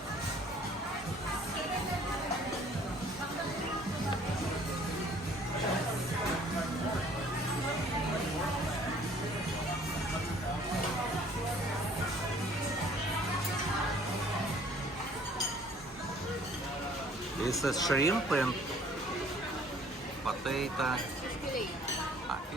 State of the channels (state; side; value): normal; both; correlation 0.56